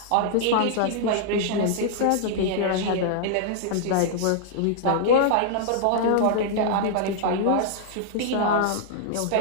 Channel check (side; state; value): both; different; correlation -0.01